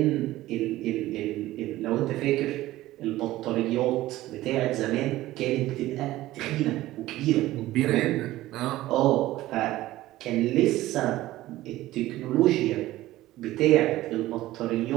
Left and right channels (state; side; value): quieter; left; 16.2 dB